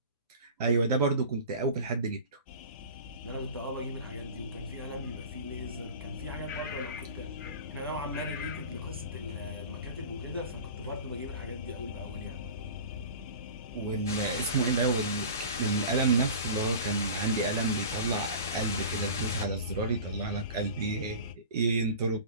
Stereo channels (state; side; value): inverted; both; correlation -0.36